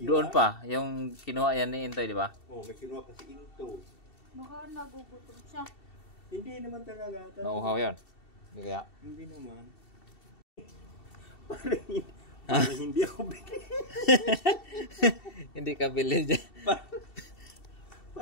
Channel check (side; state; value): right; late; 2.7 ms